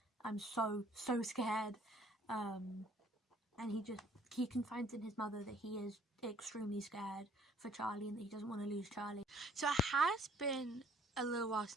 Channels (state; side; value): normal; both; correlation 0.59